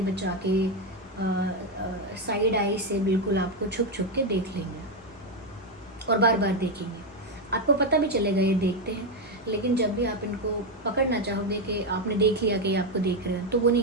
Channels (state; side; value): normal; both; correlation 0.06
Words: बचा के साइड आई से बिल्कुल आपको छुप छुप के देख लेंगे और बार बार देखेंगे। आपको पता भी चलेगा ये देखते हैं, लेकिन जब भी आप इनको पकड़ना चाहोगे कि आपने देख लिया कि ये आपको देख रहे हैं, तो वो